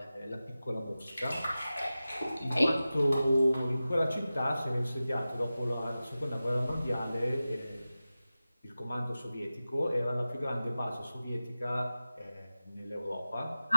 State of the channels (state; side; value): inverted; both; correlation -0.95